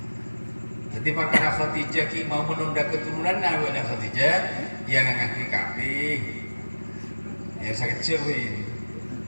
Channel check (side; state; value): both; inverted; correlation -1.00